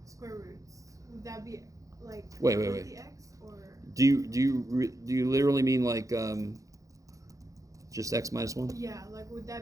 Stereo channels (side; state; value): left; late; 0.16 ms